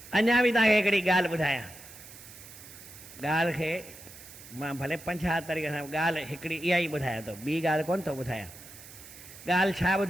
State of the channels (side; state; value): right; noise; hiss, 17 dB below the sound